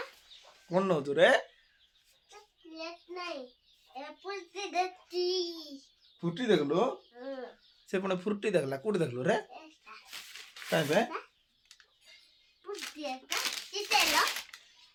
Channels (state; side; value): identical; both; correlation 1.00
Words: कौन नौ तू रे फुटी देखलु से पुणे फुर्ती देखला कौटी देखलु रे कहीं पे